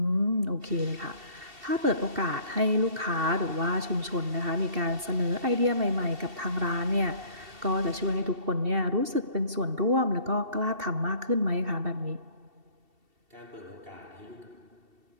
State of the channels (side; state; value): left; late; 2.7 ms